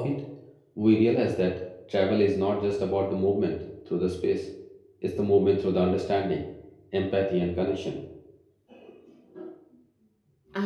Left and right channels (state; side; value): identical; both; correlation 1.00